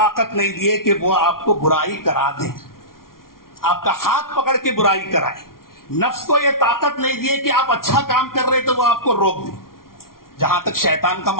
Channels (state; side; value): late; right; 0.92 ms